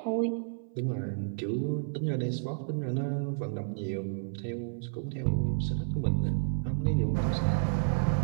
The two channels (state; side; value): silent; left; 57 dB below the other